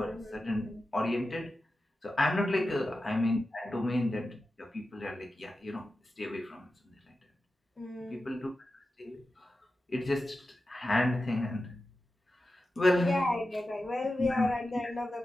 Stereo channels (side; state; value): both; normal; correlation 0.92